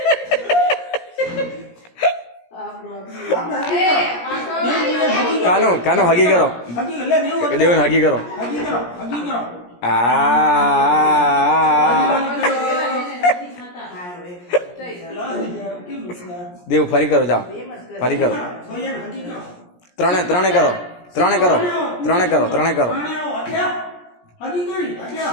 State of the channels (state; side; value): late; right; 17 ms